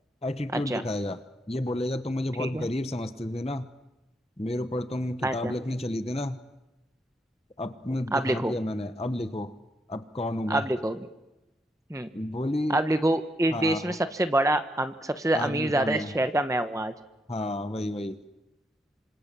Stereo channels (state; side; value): normal; both; correlation 0.78